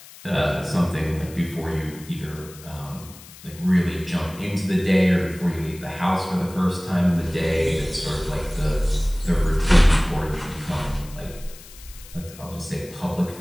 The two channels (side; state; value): left; noise; hiss, 19 dB below the sound